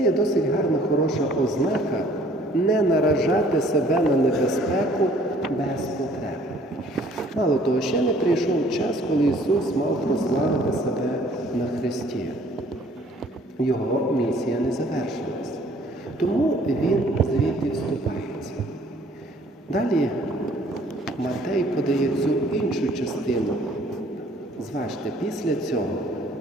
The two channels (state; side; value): normal; both; correlation 0.57